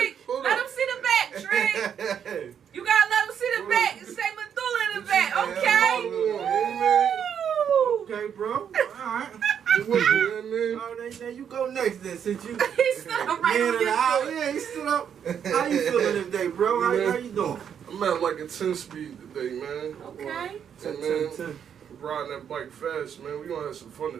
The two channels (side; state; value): left; quieter; 8.2 dB